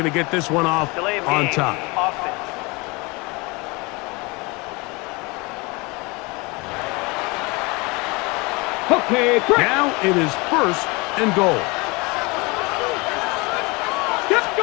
to get this one off on top. Okay, Now it is first and goal. let's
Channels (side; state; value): right; quieter; 26.4 dB